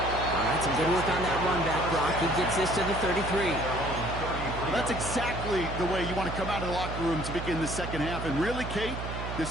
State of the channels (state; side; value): noise; right; hum, 6 dB below the sound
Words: right, some good work on that run back, Brock. He gets this to the 33. Well, that's exactly the way you want to come out of the locker room to begin the second half. And really, Kate,